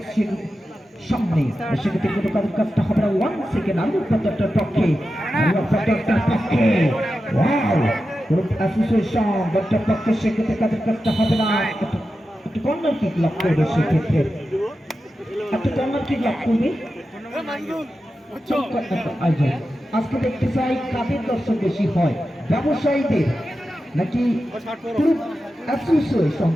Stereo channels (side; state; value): both; normal; correlation 0.91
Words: সামনে সেক্ষেত্রে কোনো কারণ কাজটা হবে না 1 সেকেন্ড আলু পর্যটনের পক্ষে ওয়াও গ্রুপ অ্যাসোসিয়েশন দলটার পক্ষে সেক্ষেত্রে কাজের কাজটা হবে না একটু কর্নার কিক লাভ করবে সেক্ষেত্রে একটা কর্নার কিক লাভ করবে আজকে দেখতে চাই কাদের দর্শক বেশি হয় ব্যবসায়ীদের নাকি গ্রুপ অ্যাসোসিয়েশন